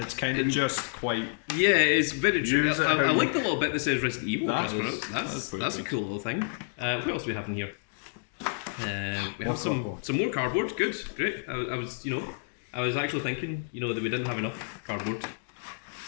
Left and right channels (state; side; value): silent; right; digital silence